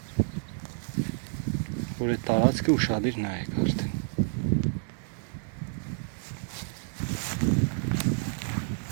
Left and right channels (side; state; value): left; silent; digital silence